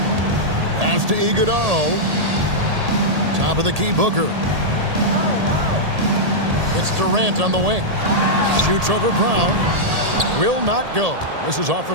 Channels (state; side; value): late; left; 1.8 ms